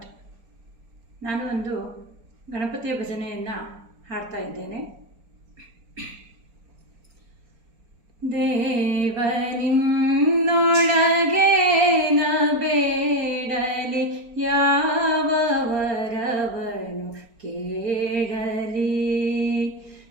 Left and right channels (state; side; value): late; left; 4.4 ms